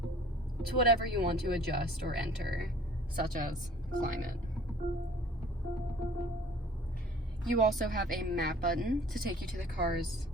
to whatever you want to adjust or enter, such as climate. You also have a map button to take you to the car's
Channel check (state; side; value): normal; both; correlation 0.50